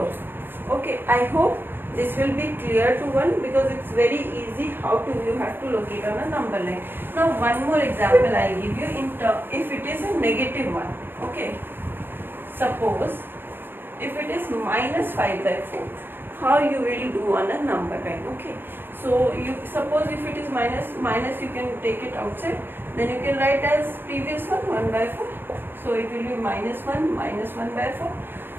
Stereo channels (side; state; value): left; late; 0.10 ms